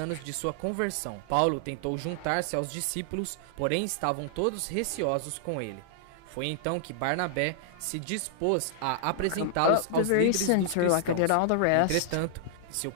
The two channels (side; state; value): both; different; correlation -0.01